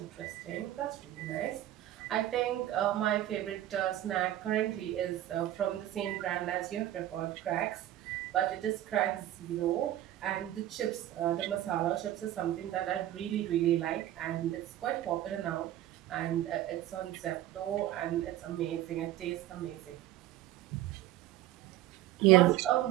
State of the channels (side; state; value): left; quieter; 13.4 dB